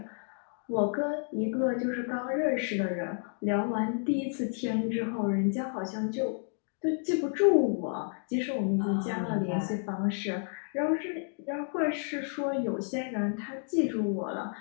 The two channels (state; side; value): silent; right; 57 dB below the other